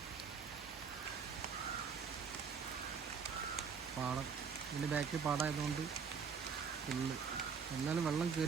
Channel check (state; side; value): quieter; left; 6.2 dB